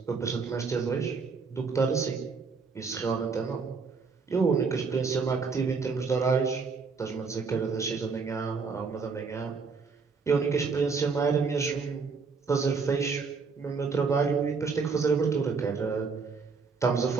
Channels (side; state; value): left; quieter; 5.0 dB